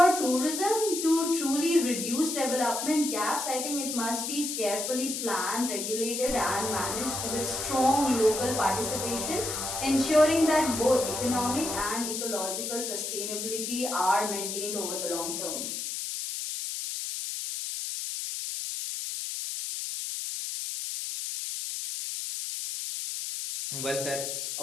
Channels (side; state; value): left; noise; hiss, 4 dB below the sound